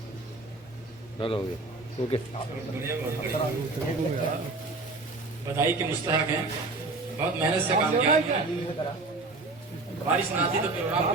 चलो हो गया, ओके। बधाई के मुस्तहक हैं, बहुत मेहनत से काम किया है। बारिश ना आती तो प्रोग्राम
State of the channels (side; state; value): left; quieter; 3.4 dB